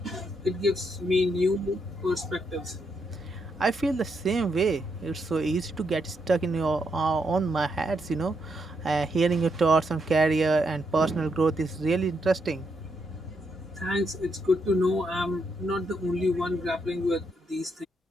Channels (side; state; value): both; normal; correlation 0.79